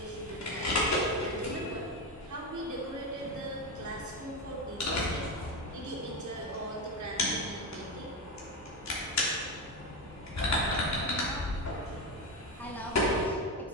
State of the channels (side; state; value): both; normal; correlation 0.14